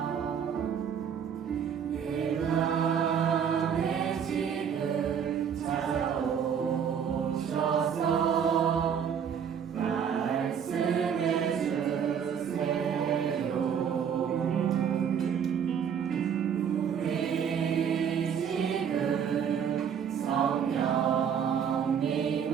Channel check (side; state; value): left; quieter; 7.8 dB